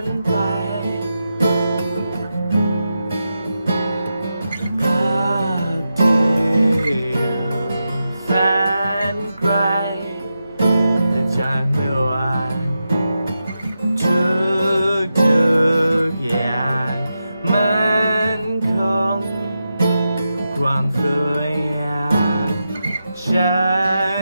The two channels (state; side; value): inverted; both; correlation -0.88